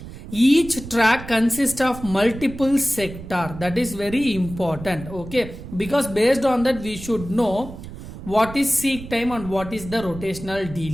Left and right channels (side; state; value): right; noise; rumble, 13 dB below the sound